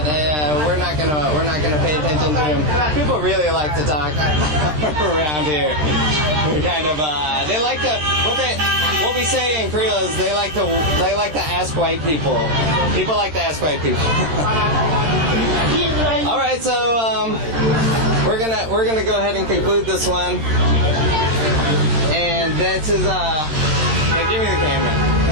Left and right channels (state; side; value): late; left; 13 ms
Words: we're not gonna pay attention to him. People really like to talk around here. Kind of, they like to what we say in Creole is they like to ask white people. People like to ask white people. All right, so we're gonna go ahead and conclude this one, and this is hey, give me the camera.